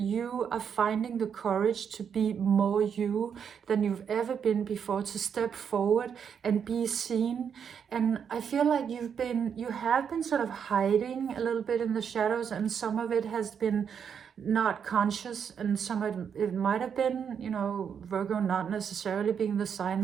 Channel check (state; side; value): quieter; left; 7.4 dB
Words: are finding the courage to be more you than you've ever been before, to step forward and be seen. And I feel like you have been sort of hiding a little bit in the shadows, and some of it has been not conscious, and some of it might have been, you know, Virgo not necessarily being the sign